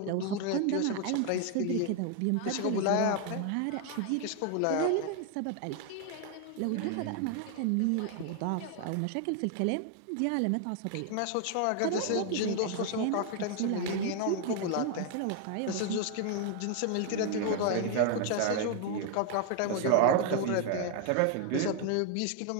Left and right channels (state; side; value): different; both; correlation 0.00